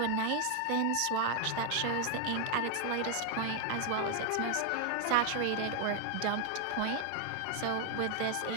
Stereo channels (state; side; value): different; both; correlation 0.00